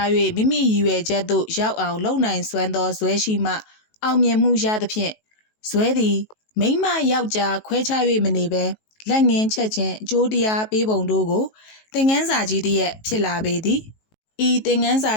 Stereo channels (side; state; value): right; late; 19 ms